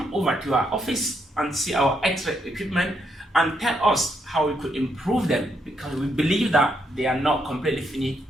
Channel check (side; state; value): both; normal; correlation 0.77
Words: over to our office and see our X-ray equipment and tell us how we could improve them, because we believe that they are not completely finished